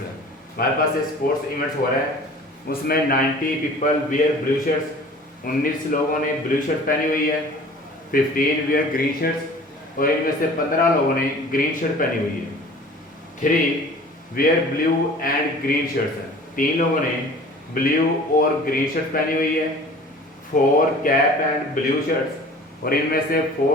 हमारे पास ये स्पोर्ट्स इवेंट्स हो रहा है, उसमें 90 पीपल वियर ब्लू शर्ट्स, 19 लोगों ने ब्लू शर्ट पहनी हुई है, 15 वियर ग्रीन शर्ट्स और इनमें से 15 लोगों ने ग्रीन शर्ट पहनी हुई है। 3 wear blue and green shirts, 3 लोगों ने ब्लू और ग्रीन शर्ट पहनी हुई है। 4 कैप एंड ब्लू शर्ट्स और इनमें से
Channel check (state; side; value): normal; both; correlation 0.45